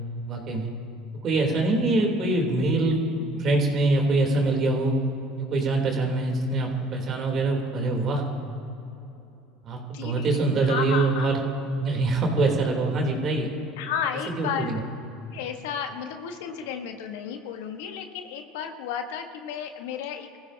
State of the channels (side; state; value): both; normal; correlation 0.54